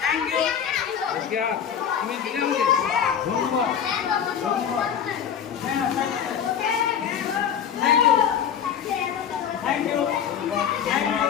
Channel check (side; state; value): right; quieter; 8.2 dB